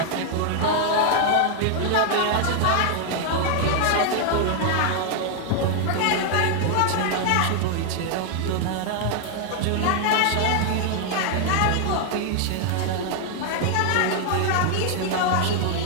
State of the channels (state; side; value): different; both; correlation 0.00